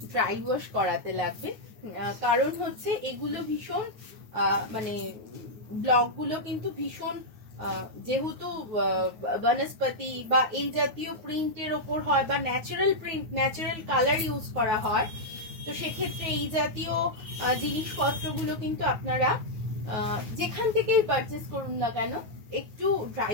ড্রাই ওয়াশ করাতে লাগবে, কারণ হচ্ছে এগুলো ভীষণ মানে ব্লকগুলো কিন্তু ভীষণ, যেহেতু বনস্পতি বা এই জাতীয় প্রিন্টের ওপর হয়, বা natural print, natural colour use করা হয়, তো সেক্ষেত্রে এই জাতীয় জিনিসপত্রগুলো কিন্তু আপনারা যেখান থেকেই পারচেস করুন না কেন, একটু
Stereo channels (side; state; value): left; late; 9.5 ms